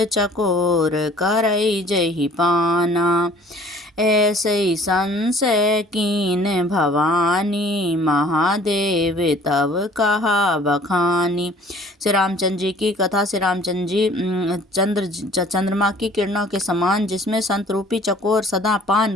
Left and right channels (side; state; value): both; normal; correlation 0.52